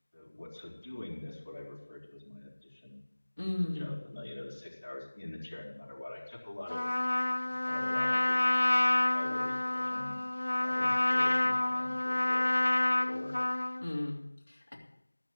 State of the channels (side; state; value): both; inverted; correlation -1.00